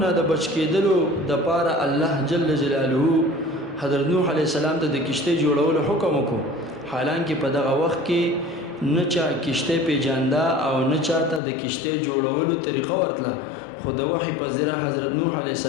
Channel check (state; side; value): drops out; right; at 11.4 s